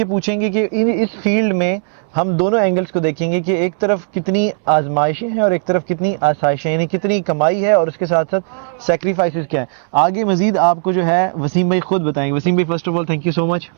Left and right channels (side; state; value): left; silent; 68 dB below the other